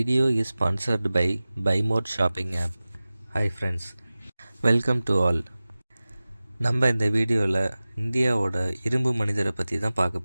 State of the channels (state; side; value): inverted; both; correlation -0.97